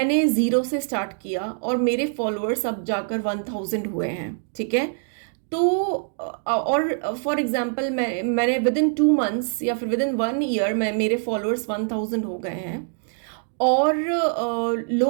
ज़ीरो से स्टार्ट किया और मेरे फॉलोअर्स अब जाकर 1000 हुए हैं, ठीक है। तो और फॉर एग्जाम्पल मैंने विद इन 2 मंथ्स या फिर विद इन 1 ईयर मेरे फॉलोअर्स 1000 हो गए हैं। और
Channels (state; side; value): silent; left; digital silence